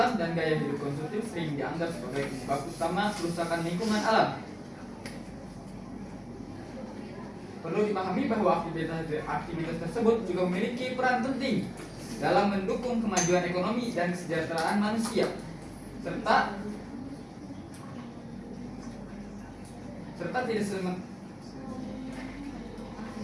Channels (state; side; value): identical; both; correlation 1.00